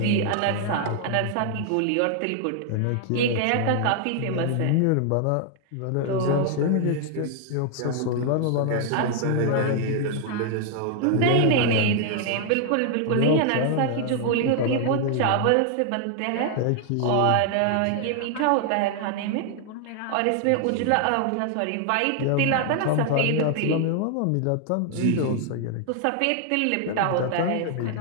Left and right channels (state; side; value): different; both; correlation 0.00